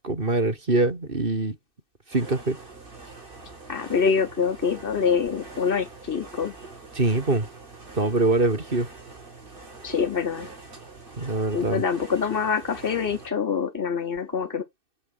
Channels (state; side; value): late; left; 2.6 ms